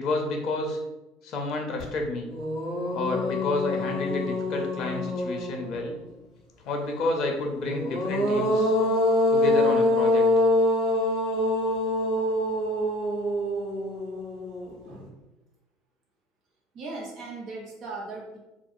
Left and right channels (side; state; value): both; normal; correlation 0.50